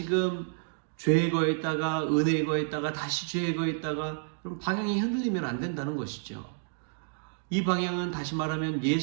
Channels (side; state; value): left; silent; 55 dB below the other